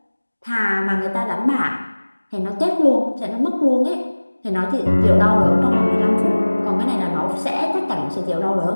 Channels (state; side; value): inverted; both; correlation -1.00